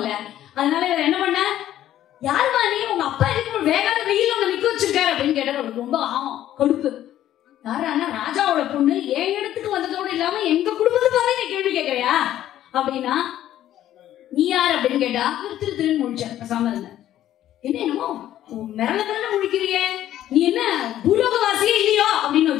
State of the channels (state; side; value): quieter; right; 12.4 dB